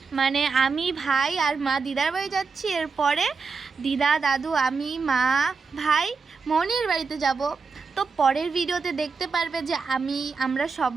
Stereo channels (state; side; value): quieter; left; 4.9 dB